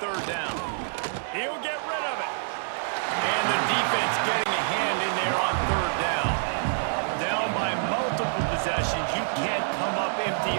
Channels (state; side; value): silent; left; digital silence